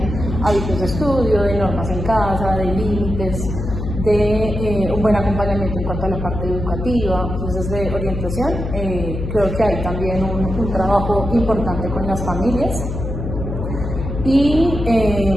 hábitos de estudio, de normas en casa, de límites, de un buen acompañamiento en cuanto a la parte educativa. Entonces, de orientación, creo que hay también un trabajo importante con las familias y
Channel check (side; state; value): left; noise; hum, 5 dB below the sound